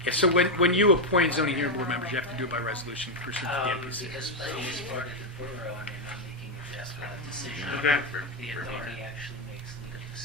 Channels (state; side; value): normal; both; correlation 0.03